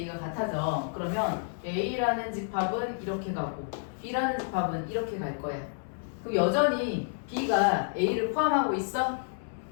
같아져. 그러면 A라는 집합은 이렇게 가고 B라는 집합은 이렇게 갈 거야. 그럼 여전히 B가 A를 포함하고 있어?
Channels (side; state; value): right; silent; 58 dB below the other